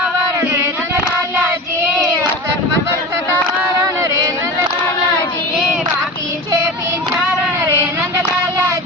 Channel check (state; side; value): normal; both; correlation 0.30